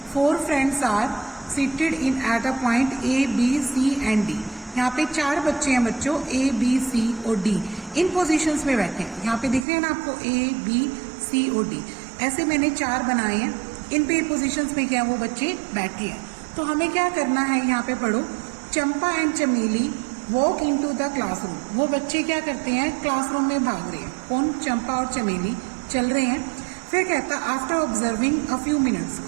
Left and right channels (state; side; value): drops out; left; at 9.7 s